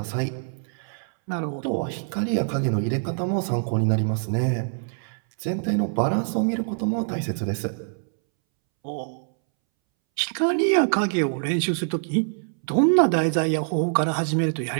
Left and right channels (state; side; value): silent; left; 62 dB below the other